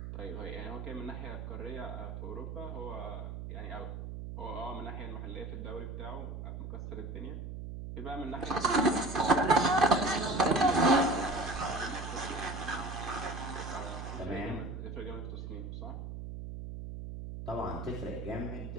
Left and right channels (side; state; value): right; noise; hum, 7 dB below the sound